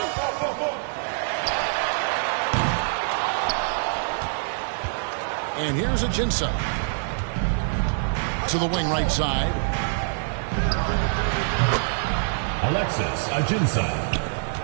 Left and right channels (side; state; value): left; silent; digital silence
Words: And here's Ajinça. To the wing right side. Alexis Ajinça.